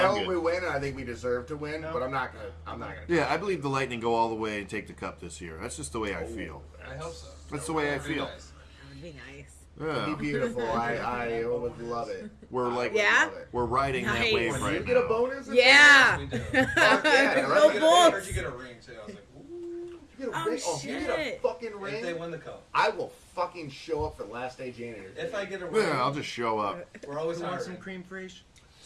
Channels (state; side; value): identical; both; correlation 1.00